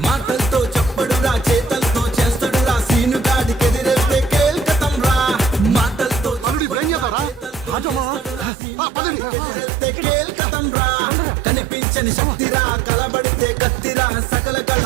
మాటలతో చెప్పడురా, చేతలతో చేస్తాడురా, సీనుగాడికి ఎదిరేస్తే కేల్కతం రా. మాటలతో కేల్కతం రా. కనిపించని శక్తిరా, కలబడితే కత్తిరా, సకల కళ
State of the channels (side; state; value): left; drops out; at 8.5 s